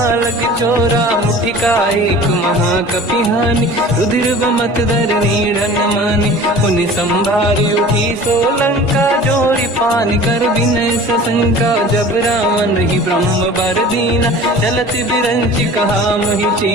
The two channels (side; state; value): both; normal; correlation 0.42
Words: चोरा। मुठिका एक महाकपि हानि, रुधिर बमत धर नीड़न मानि। पुनि संभारी उठी सो लंका, जोरी पानी कर विनय सशंका। जब रावण ही ब्रह्म बर दीना, चलत बिरंच कहा मोहि